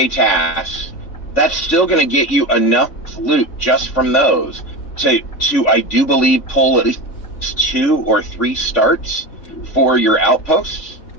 tasks, that's still going to get you enough loot just from those to I do believe pull at least 2 or 3 starts for your outposts,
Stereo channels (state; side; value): late; right; 3.5 ms